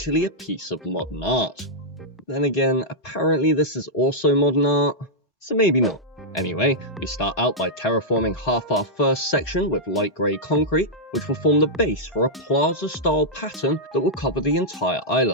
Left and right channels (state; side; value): normal; both; correlation -0.09